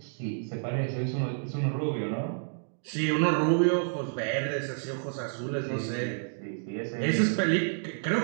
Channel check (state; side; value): silent; left; digital silence